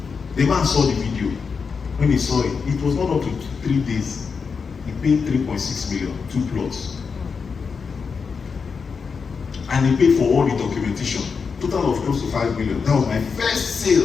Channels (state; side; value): quieter; right; 5.5 dB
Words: The man saw the video. When he saw it, it was not up to 3 days. He paid 3.6 million, 2 plots. And he paid for all the documentation. Total of close to 5 million. That was my first